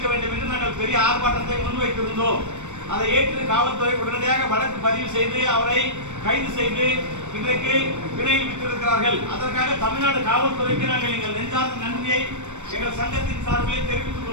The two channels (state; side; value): late; left; 0.84 ms